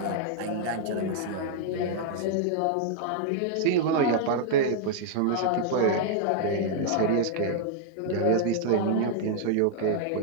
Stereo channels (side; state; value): both; different; correlation -0.01